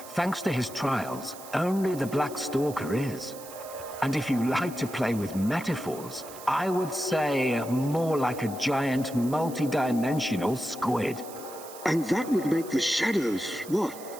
thanks to his trials, only the Black Stalker is. And if you like to play with metaphors, I would say more like a giant multidimensional squid. And that would make the shadows, what?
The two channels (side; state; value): right; noise; hiss, 16 dB below the sound